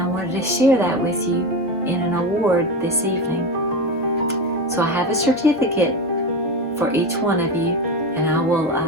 wanted to share that with you in an award this evening. So I have a certificate for each one of you, and I will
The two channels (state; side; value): normal; both; correlation 0.20